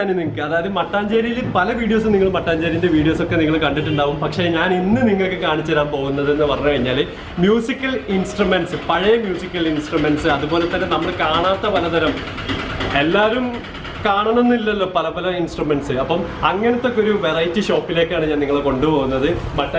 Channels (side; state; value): both; identical; correlation 1.00